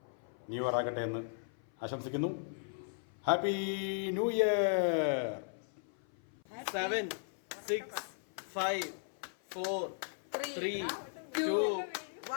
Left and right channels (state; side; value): silent; right; 53 dB below the other